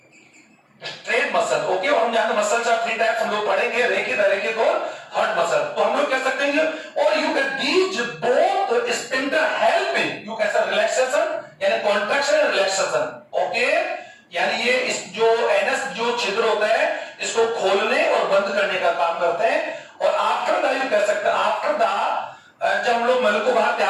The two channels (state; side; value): identical; both; correlation 1.00